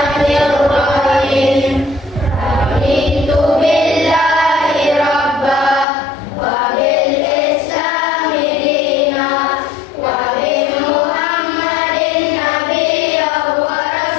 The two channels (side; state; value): right; drops out; at 5.9 s